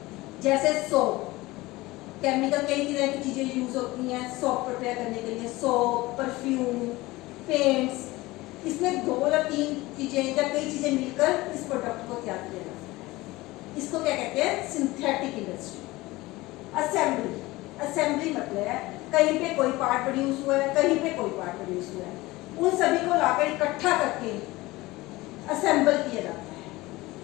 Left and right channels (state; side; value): quieter; right; 20.1 dB